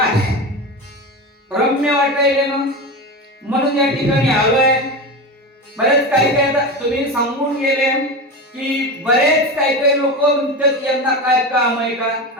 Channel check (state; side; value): normal; both; correlation 0.23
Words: रम्य वाटायले ना, म्हणून या ठिकाणी आलोय. बरेच काही तुम्ही सांगून गेले की बरेच काही लोक म्हणतात यांना काय काम आहे का,